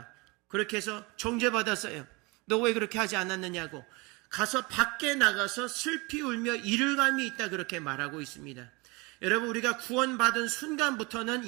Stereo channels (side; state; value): left; quieter; 26.5 dB